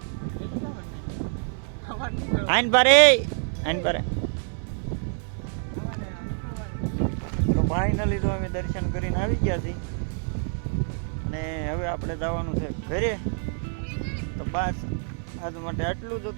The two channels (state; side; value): silent; left; 60 dB below the other